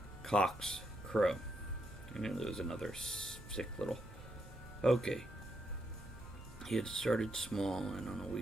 cocks crow. I knew there was another sick little... Okay. He had started small and on a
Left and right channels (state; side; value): normal; both; correlation 0.79